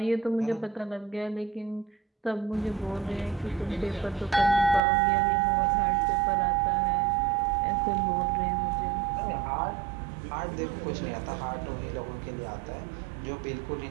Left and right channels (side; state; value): left; drops out; at 4.8 s